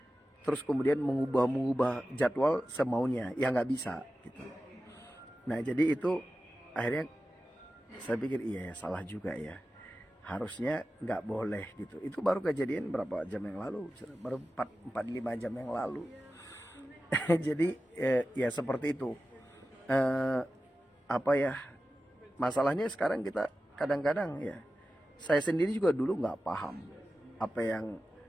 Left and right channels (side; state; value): both; normal; correlation 0.94